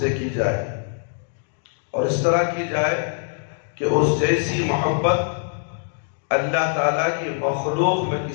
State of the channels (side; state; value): right; silent; digital silence